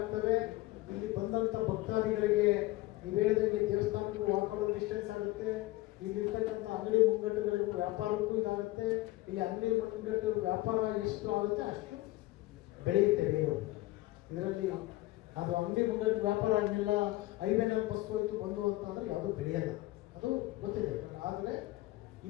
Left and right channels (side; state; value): right; quieter; 18.5 dB